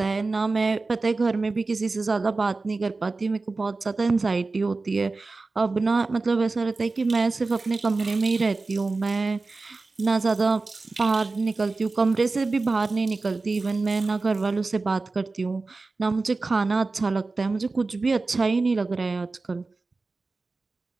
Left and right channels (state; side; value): quieter; left; 3.7 dB